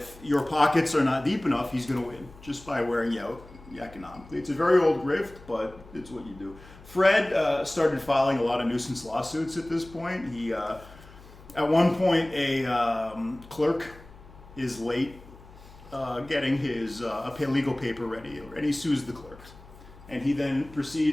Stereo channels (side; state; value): left; noise; hum, 21 dB below the sound